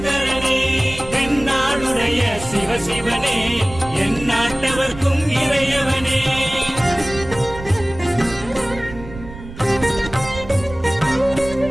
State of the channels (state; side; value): noise; right; rumble, 14 dB below the sound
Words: தென்னாடுடைய சிவசிவனே, என் நாட்டவர்க்கும் இறையவனே.